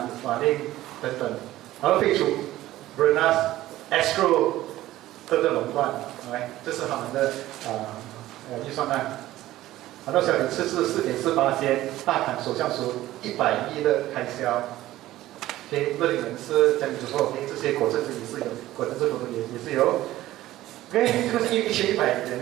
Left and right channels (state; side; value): quieter; left; 15.3 dB